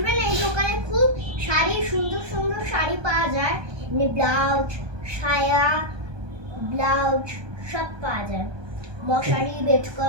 এই দোকানে, খুব শাড়ি, সুন্দর সুন্দর শাড়ি পাওয়া যায়, এমনি ব্লাউজ, সায়া, ব্লাউজ সব পাওয়া যায়, মশারি, বেড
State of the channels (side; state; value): left; late; 1.2 ms